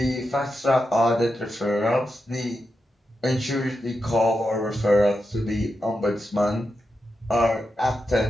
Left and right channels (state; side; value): normal; both; correlation 0.88